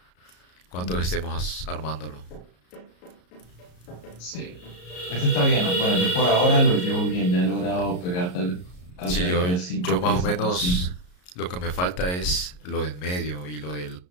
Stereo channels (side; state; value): right; late; 33 ms